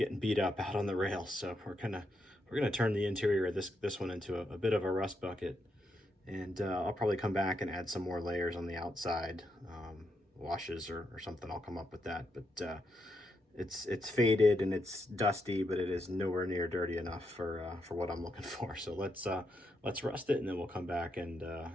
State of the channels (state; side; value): normal; both; correlation 0.81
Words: beat up out on the rails. So we're gonna turn the interior of this one into a bit of a rust bucket. And I'll probably come back and add some more layers on the outside, washes or something. I'll come up with that. But it's faded and it's dusty, but it is nowhere near dirty enough for what I'm looking for. So let's rust it, and then we'll come back and